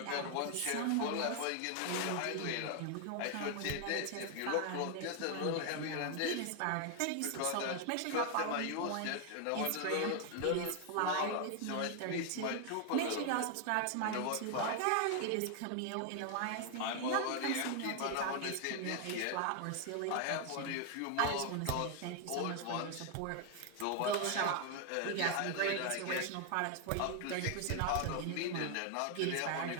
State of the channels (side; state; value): both; different; correlation 0.00